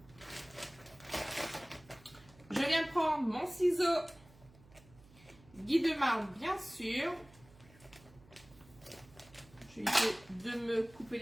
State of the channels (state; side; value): noise; right; hum, 24 dB below the sound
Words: Je viens prendre mon ciseau Guy de marbre, bien sûr. Je vais essayer de me couper